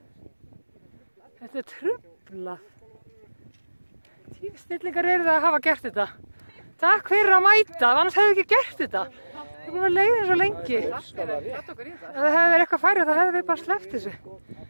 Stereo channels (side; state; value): both; inverted; correlation -1.00